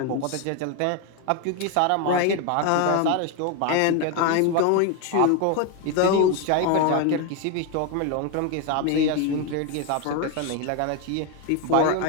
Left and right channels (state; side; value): different; both; correlation 0.01